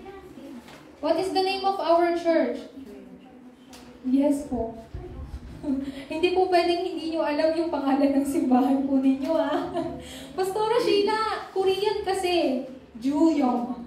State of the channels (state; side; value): identical; both; correlation 1.00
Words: What is the name of our church? Yes po. Hindi po pwedeng hindi nyo alam yung pangalan ng simbahan po ninyo, ha? Pastora Sheila, Korean kasi. Juyong.